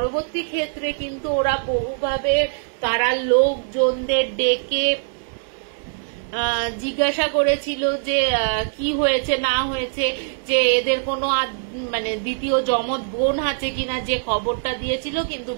ক্ষেত্রে কিন্তু ওরা বহুভাবে তারা লোকজনদের ডেকে জিজ্ঞাসা করেছিল যে কি হয়েছে না হয়েছে, যে এদের কোনো মানে দ্বিতীয় জমজ বোন আছে কিনা, যে খবরটা দিয়েছিল। কিন্তু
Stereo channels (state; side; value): silent; left; digital silence